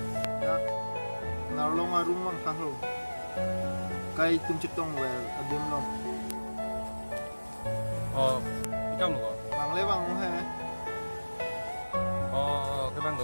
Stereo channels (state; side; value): inverted; both; correlation -1.00